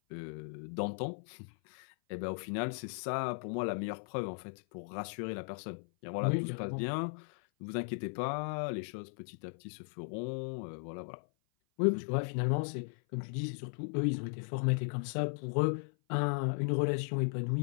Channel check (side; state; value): right; silent; 53 dB below the other